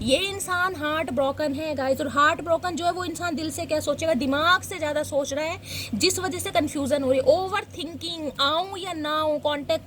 ये इंसान हार्ट ब्रोकन है गाइस, और हार्ट ब्रोकन जो है वो इंसान दिल से क्या सोचेगा, दिमाग से ज़्यादा सोच रहा है, जिस वजह से कन्फ्यूजन हो रही है। ओवर थिंकिंग, आऊँ या ना आऊँ, कॉन्टेक्ट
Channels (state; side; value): identical; both; correlation 1.00